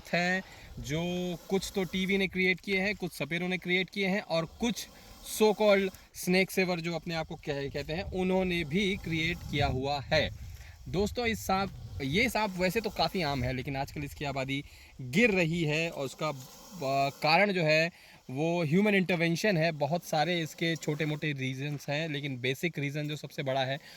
हैं जो कुछ तो टीवी ने क्रिएट किए हैं, कुछ सपेरों ने क्रिएट किए हैं और कुछ सो कॉल्ड स्नेक सेवर जो अपने आप को कहते हैं उन्होंने भी क्रिएट किया हुआ है। दोस्तों ये सांप वैसे तो काफ़ी आम है, लेकिन आजकल इसकी आबादी गिर रही है और उसका कारण जो है वो ह्यूमन इंटरवेंशन है। बहुत सारे इसके छोटे मोटे रीजंस हैं, लेकिन बेसिक रीज़न जो सबसे बड़ा है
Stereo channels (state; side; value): identical; both; correlation 1.00